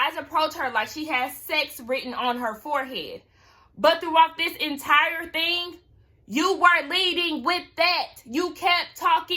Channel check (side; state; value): both; identical; correlation 1.00